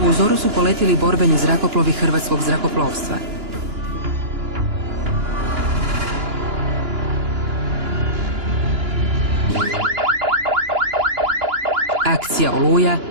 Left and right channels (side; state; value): left; late; 2.9 ms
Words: U zoru su poletjeli borbeni zrakoplovi hrvatskog zrakoplovstva. Akcija Oluja